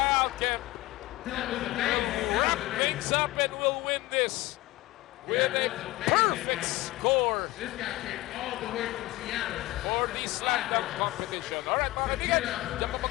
Kemp. Wrap things up and we'll win this with a perfect score for the slam dunk competition. All right, mga kaibigan. Diyan pa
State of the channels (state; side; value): quieter; right; 18.9 dB